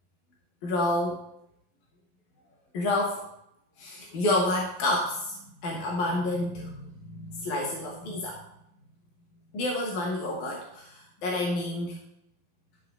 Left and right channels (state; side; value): late; right; 11 ms